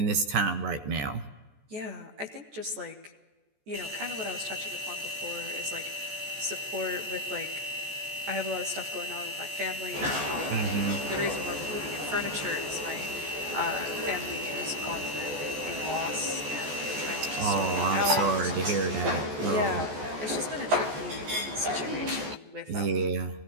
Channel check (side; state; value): left; late; 14 ms